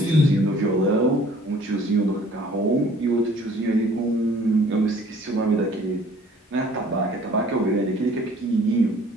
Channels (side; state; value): both; normal; correlation 0.54